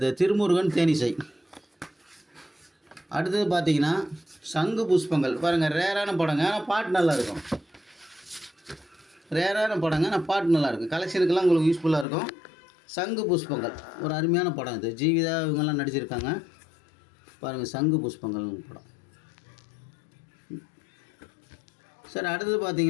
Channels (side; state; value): right; drops out; at 12.1 s